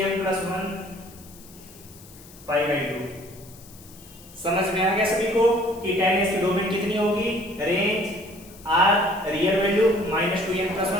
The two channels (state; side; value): noise; left; hiss, 21 dB below the sound